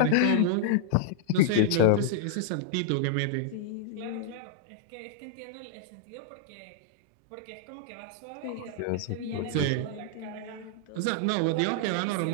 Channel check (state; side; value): different; both; correlation -0.01